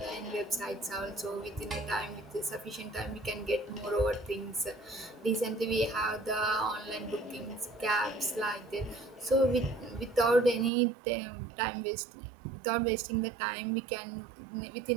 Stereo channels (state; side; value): drops out; left; at 10.7 s